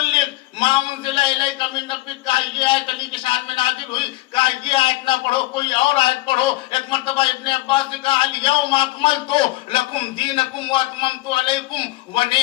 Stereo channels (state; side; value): quieter; right; 19.3 dB